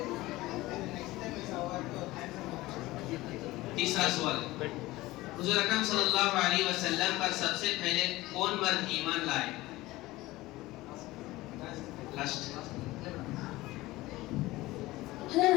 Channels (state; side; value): quieter; right; 18.7 dB